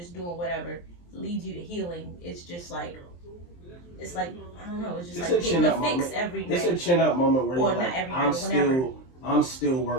doing whatever leads you to healing. It's just like, I don't know. It's just like getting a fix every day. It's a chin up moment where you're like, I'm still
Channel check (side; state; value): right; late; 23 ms